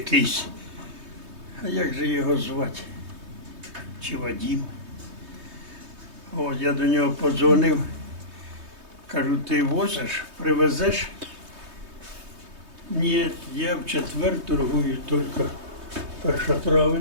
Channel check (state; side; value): late; left; 3.2 ms